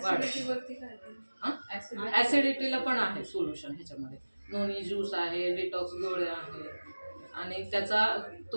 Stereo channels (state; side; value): inverted; both; correlation -1.00